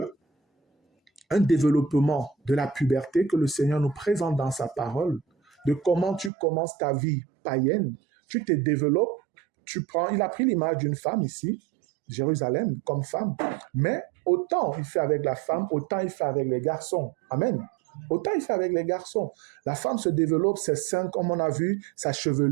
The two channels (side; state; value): left; drops out; at 6.3 s